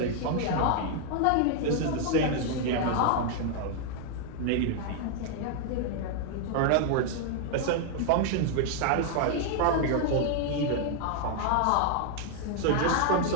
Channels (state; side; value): different; both; correlation 0.00